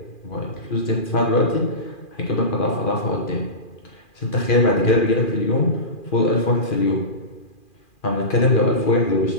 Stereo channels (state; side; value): late; right; 2.4 ms